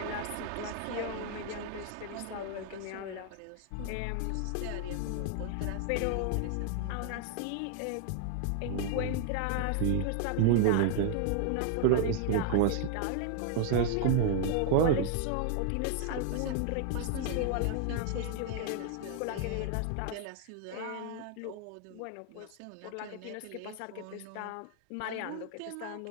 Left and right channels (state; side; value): different; both; correlation 0.00